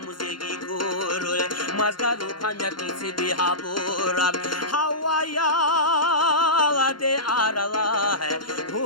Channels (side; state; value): right; late; 0.71 ms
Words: muzegi guru Mazgaru pamyakisi bihaburab Havaya de arala